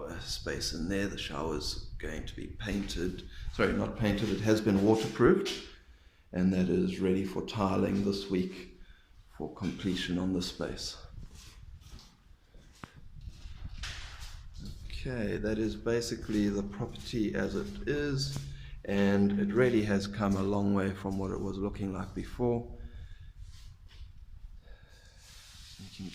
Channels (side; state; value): both; identical; correlation 1.00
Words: space in there. The shower's going to be painted, sorry, not painted, it has been waterproofed, and that is ready for tiling this week for completion on the space. Okay, that is basically the property as it is, and it really has come a long way from what it was looking like before. You